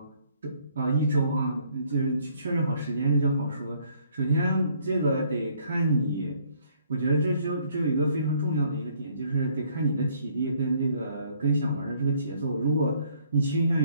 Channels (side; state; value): both; inverted; correlation -0.64